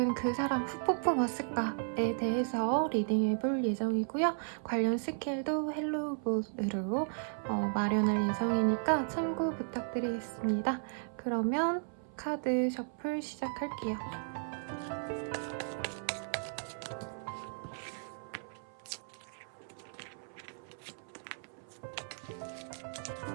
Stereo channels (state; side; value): silent; left; 54 dB below the other